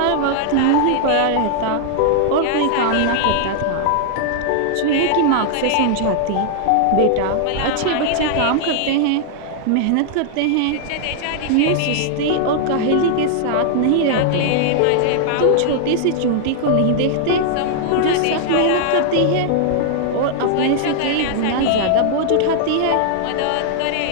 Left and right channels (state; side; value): different; both; correlation -0.01